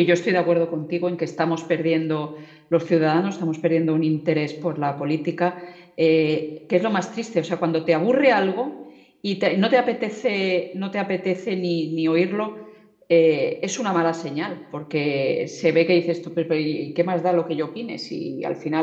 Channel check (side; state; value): both; identical; correlation 1.00